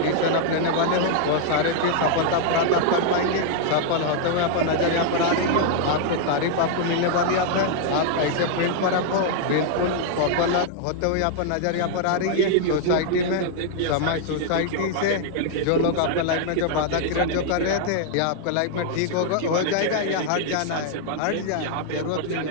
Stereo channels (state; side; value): different; both; correlation 0.00